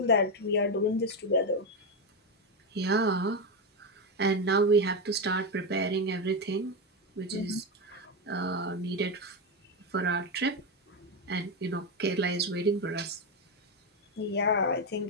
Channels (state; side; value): normal; both; correlation 0.10